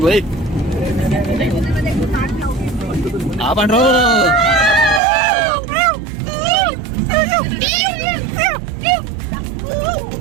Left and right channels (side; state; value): left; drops out; at 5.0 s